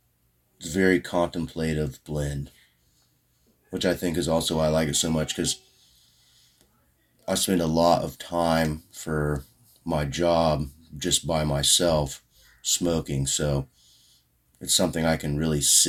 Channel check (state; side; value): identical; both; correlation 1.00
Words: it's a very contemplative blend, which I think is also why I like it so much because I spend a lot of time for my job just by myself smoking. So it's something I can really